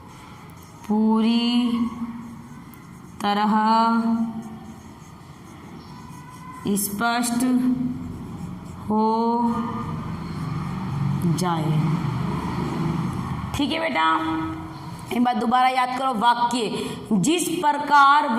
पूरी तरह स्पष्ट हो जाए। ठीक है बेटा, एक बात दोबारा याद करो, वाक्य जिस प्रकार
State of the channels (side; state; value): both; identical; correlation 1.00